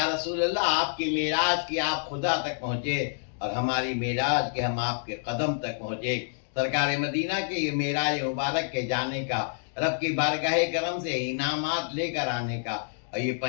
رسول اللہ آپ کی معراج کی آپ خدا تک پہنچے، اور ہماری معراج کے ہم آپ کے قدم تک پہنچے۔ سرکار مدینہ کے یہ معراج مبارک کے جانے کا، رب کی بارگاہ کرم سے انعامات لے کر آنے کا، اور یہ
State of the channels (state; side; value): silent; right; digital silence